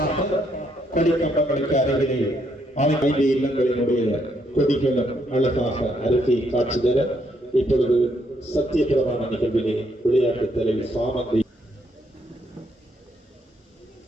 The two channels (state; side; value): normal; both; correlation 0.73